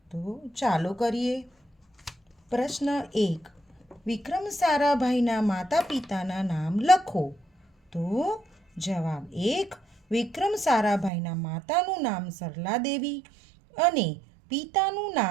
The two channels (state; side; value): drops out; left; at 11.1 s